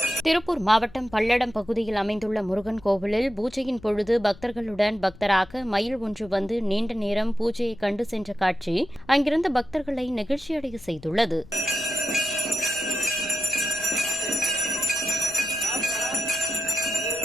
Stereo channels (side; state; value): left; noise; rumble, 21 dB below the sound